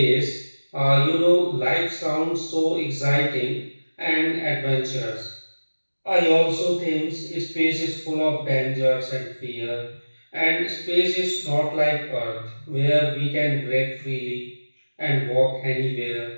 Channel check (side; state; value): both; inverted; correlation -1.00